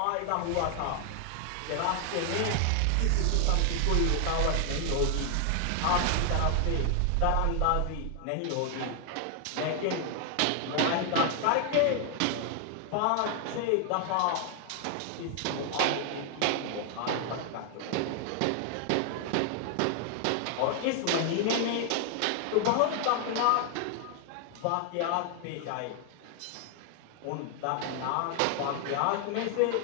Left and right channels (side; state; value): both; different; correlation 0.00